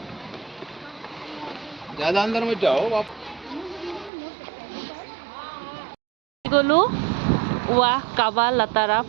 ज्यादा अंदर मत जाओ आप। গ'লো ৱা কাবা লাটাৰা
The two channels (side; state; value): left; drops out; at 4.1 s